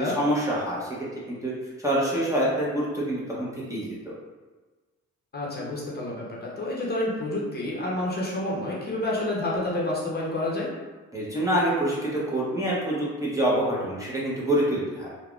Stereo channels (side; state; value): both; normal; correlation 0.33